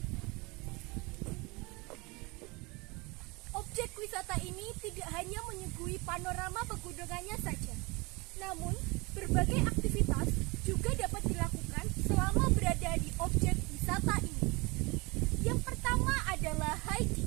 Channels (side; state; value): left; quieter; 25.9 dB